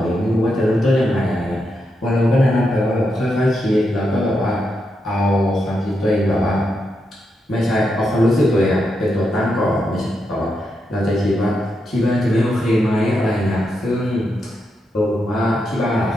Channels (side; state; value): both; normal; correlation 0.84